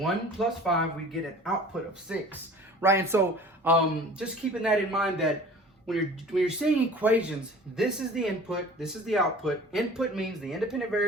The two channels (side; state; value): both; normal; correlation 0.45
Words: plus 5, we get an output of 6, right? And so just keeping that in mind that when you're seeing equations, this is the input, this is the output. Input means the independent